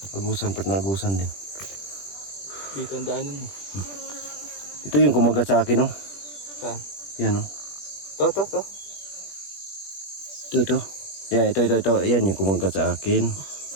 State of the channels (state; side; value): late; right; 21 ms